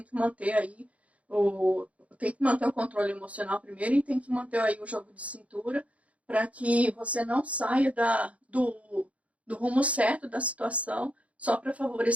que manter aí o controle emocional primeiro, e tem que manter aí o jogo de cintura para que você não saia do rumo certo da situação só para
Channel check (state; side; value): late; left; 0.066 ms